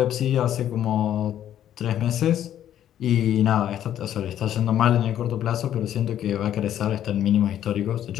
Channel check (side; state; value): right; quieter; 11.0 dB